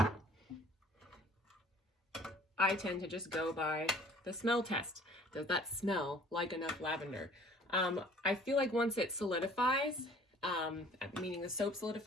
I tend to just go by the smell test. Does that smell like enough lavender? I feel like once it solidifies, meaning the soap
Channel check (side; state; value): both; normal; correlation 0.52